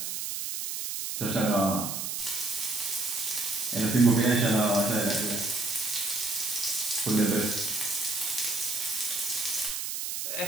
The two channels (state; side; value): noise; right; hiss, 4 dB below the sound